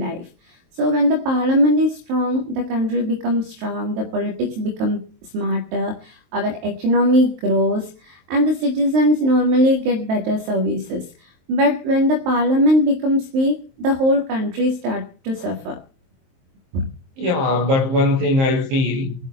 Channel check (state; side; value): late; left; 23 ms